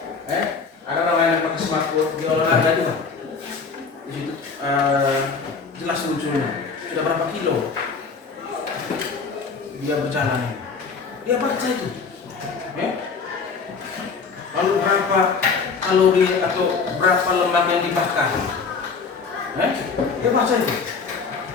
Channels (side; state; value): right; quieter; 5.1 dB